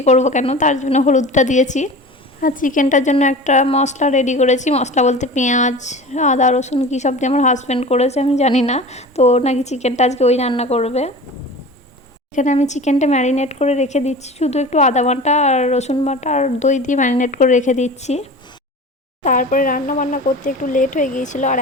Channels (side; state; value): both; normal; correlation 0.36